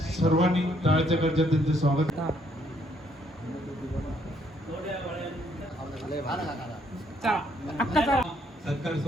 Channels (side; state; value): both; normal; correlation 0.69